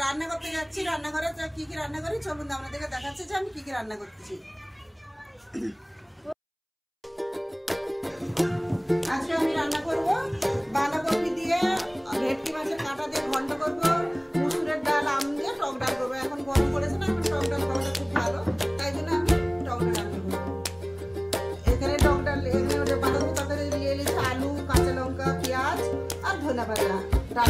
रान्ना करते जाচ্ছি। रान्नाघरे की रान्ना करी चलुन आपनादेरके देखाচ্ছি যে আমি কি রান্না করতেছি। আজকে আমি রান্না করব বাঁধাকপি দিয়ে ভেটকি মাছের কাঁটা দিয়ে ঘন্ট করব, মুসুরের ডাল আম দিয়ে টক ডাল করব। এখন গরম পড়েছে না, এখন টক ডাল খাওয়াটা খুব ভালো, তাই জন্য আমি টক ডাল রান্না করব। এখানে টক ডাল এখানে বাঁধাকপি তরকারি দিয়ে নিয়েছি আলু, কাঁচা লঙ্কা, পেঁয়াজ আর ধনে পাতা।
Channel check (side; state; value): both; identical; correlation 1.00